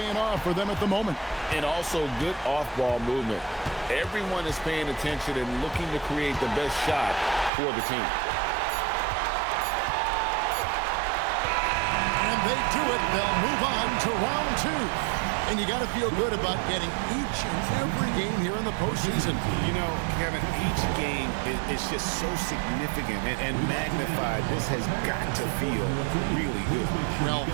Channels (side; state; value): left; drops out; at 7.5 s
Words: off for them at the moment. And also good off-ball movement. Everyone is paying attention and looking to create the best shot for the team. And they do it. They'll move on to round 2. And you got to feel good about getting each and every game here in the postseason. You know, Kevin, each game is just so significant and magnified. This has got to feel really good. Well,